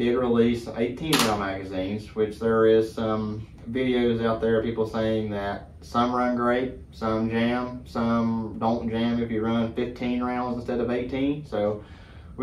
release 18-round magazines, which there is some videos out there of people saying that some run great, some jam, some don't jam if you run 15 rounds instead of 18. So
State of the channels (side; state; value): both; identical; correlation 1.00